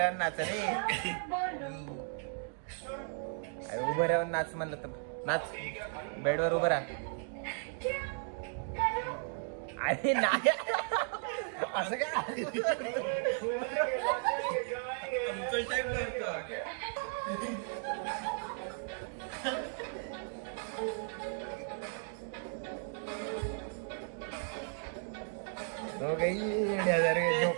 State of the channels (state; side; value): silent; left; 54 dB below the other